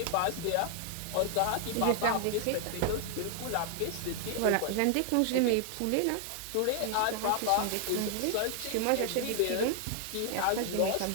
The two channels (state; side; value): different; both; correlation 0.00